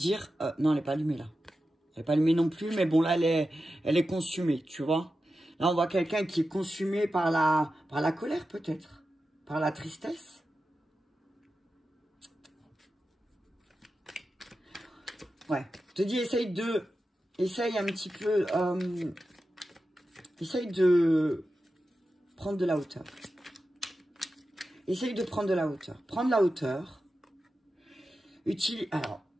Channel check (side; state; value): both; normal; correlation 0.92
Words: non, elle n'est pas allumée, là. Elle n'est pas allumée non plus, mais bon, là, elle est consumée, tu vois. Là, on voit quelqu'un qui est consumé par la colère, peut-être. Par la tristesse. Ouais. Je te dis, essaye un petit peu... essaye de prendre de la hauteur. Essaye de prendre de la hauteur. Prendre la hauteur. Alors,